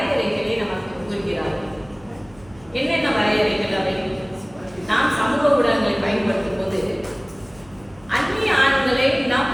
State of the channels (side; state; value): right; noise; hum, 25 dB below the sound